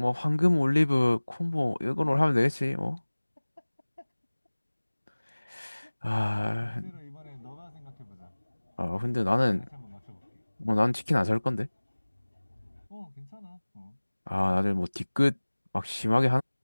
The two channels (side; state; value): both; inverted; correlation -1.00